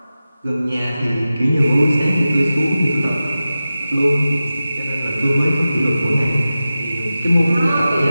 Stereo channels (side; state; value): both; inverted; correlation -0.94